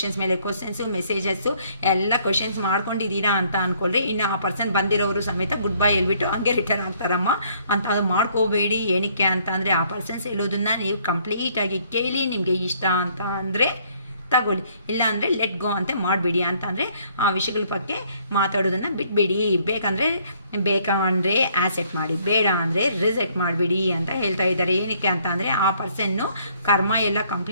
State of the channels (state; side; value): inverted; both; correlation -0.64